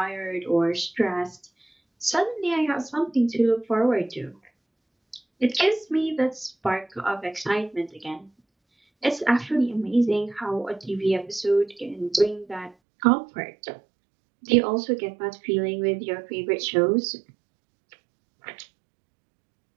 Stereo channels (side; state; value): left; drops out; at 12.8 s